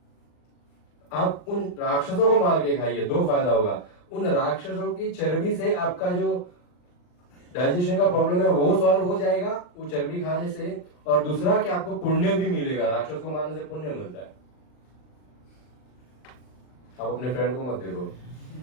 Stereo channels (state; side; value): late; right; 39 ms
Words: आप उन राक्षसों को मार के खाइए, 2 फायदा होगा, उन राक्षसों की चर्बी से आपका जो डाइजेशन का प्रॉब्लम है वो सॉल्व हो जाएगा वो चर्बी खाने से। और दूसरा कि आपको पुण्य भी मिलेगा, राक्षस को मारने से पुण्य मिलता है। आप अपने फ्रेंड को मत देखो।